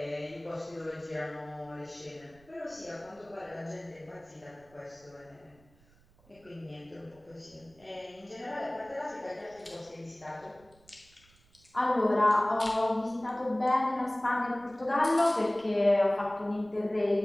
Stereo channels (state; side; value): noise; right; rumble, 29 dB below the sound